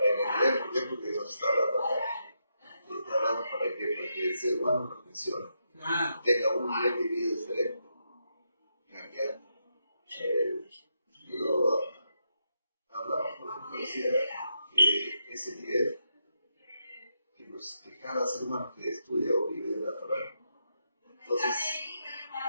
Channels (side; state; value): both; inverted; correlation -0.82